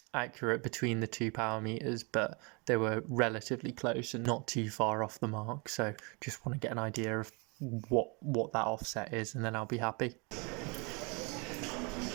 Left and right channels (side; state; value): left; quieter; 31.0 dB